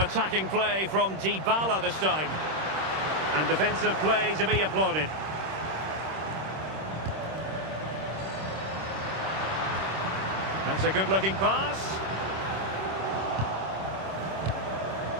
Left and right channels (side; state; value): left; late; 26 ms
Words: play from Dybala this time. And defensive play to be applauded. That's a good-looking pass.